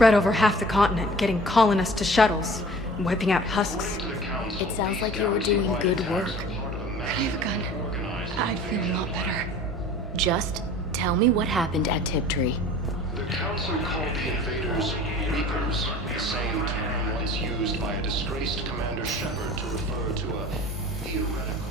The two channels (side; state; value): both; normal; correlation 0.44